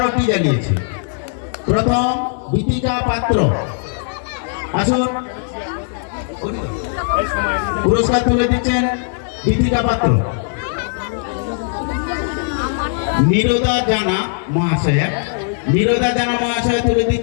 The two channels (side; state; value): right; silent; 55 dB below the other